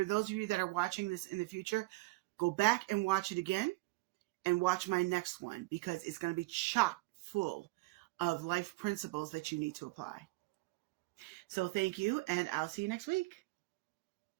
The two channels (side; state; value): left; quieter; 23.0 dB